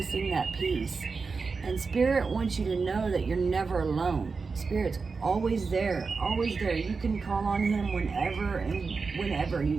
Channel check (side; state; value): left; quieter; 4.6 dB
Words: that piece. And Spirit wants you to know that you're never alone. Spirit's always there, always there. You can call on Him whenever and whenever. You